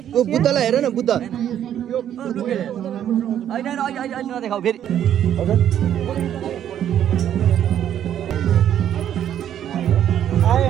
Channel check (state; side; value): quieter; left; 10.3 dB